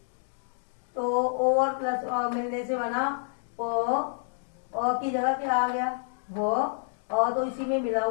तो ओ और प्लस अ मिलने से बना प, अ की जगह क्या आ गया वो, अ तो इसी में मिला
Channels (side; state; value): right; silent; digital silence